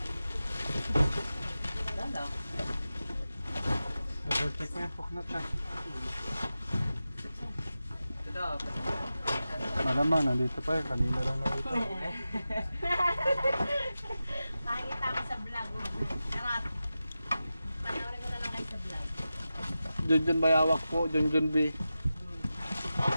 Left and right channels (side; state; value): both; inverted; correlation -0.93